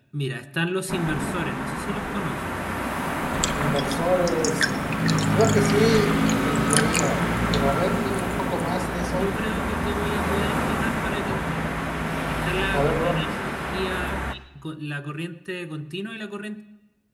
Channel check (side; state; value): both; identical; correlation 1.00